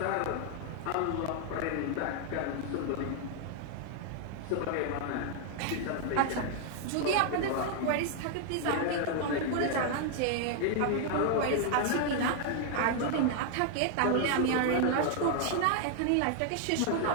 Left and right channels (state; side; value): different; both; correlation 0.00